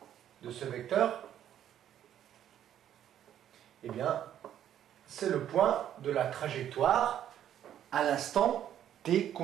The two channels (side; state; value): left; quieter; 10.6 dB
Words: de ce vecteur, eh bien, c'est le point de la trajectoire à l'instant t